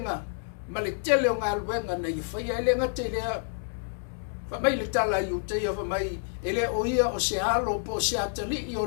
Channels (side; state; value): right; silent; digital silence